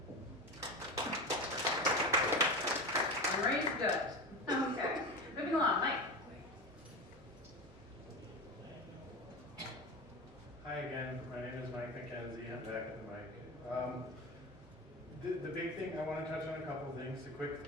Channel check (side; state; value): both; normal; correlation 0.25